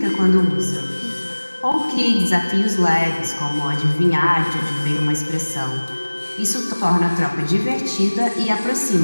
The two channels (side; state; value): both; inverted; correlation -1.00